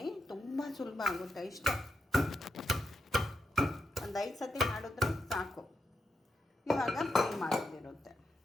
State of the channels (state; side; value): normal; both; correlation 0.83